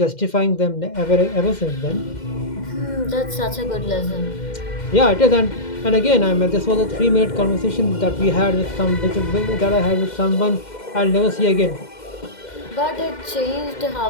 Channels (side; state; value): right; late; 2.1 ms